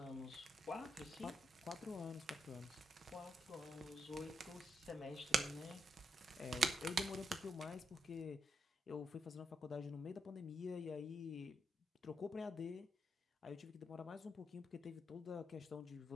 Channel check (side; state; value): both; normal; correlation 0.80